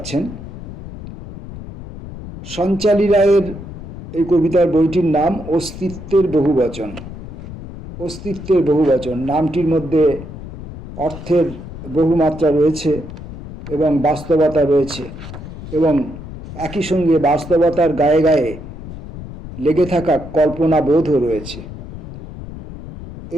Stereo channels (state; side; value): noise; left; rumble, 12 dB below the sound